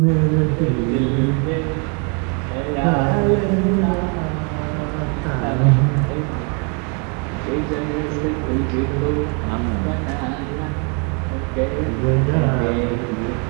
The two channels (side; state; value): left; quieter; 36.3 dB